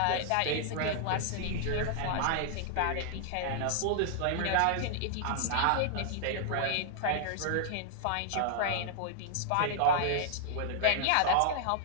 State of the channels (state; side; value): different; both; correlation -0.01